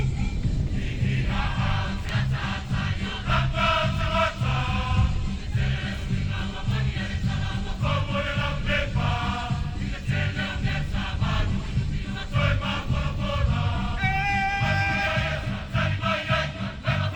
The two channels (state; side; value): identical; both; correlation 1.00